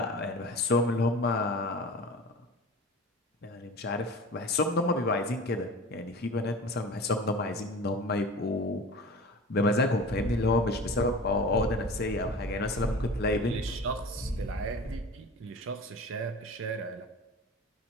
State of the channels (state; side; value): normal; both; correlation 0.37